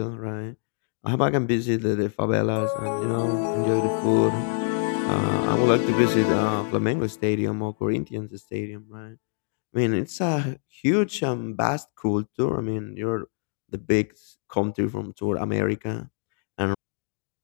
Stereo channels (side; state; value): right; silent; digital silence